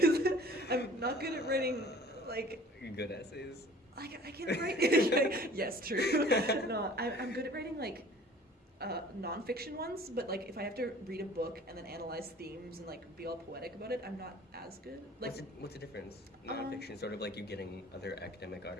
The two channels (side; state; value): both; normal; correlation 0.48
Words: I'm not good at writing like You're good at essays? I can write. Yes, true. No, I'm good at writing like nonfiction ones, but like if I have to read a book and then analyze themes and like be all poetic about it, I'm not as good. Like, What's the difference? Nonfiction, sort of like you getting other academic